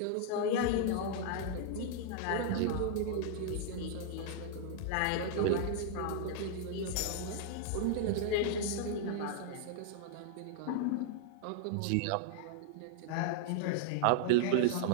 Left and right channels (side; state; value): both; different; correlation -0.01